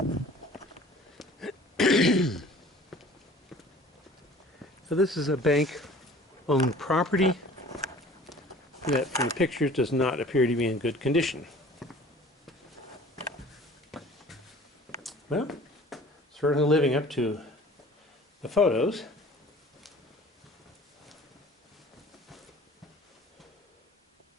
So this is a bank-owned property that from the pictures does not appear to be in good condition. Well, certainly living up to the photos.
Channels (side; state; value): both; normal; correlation 0.48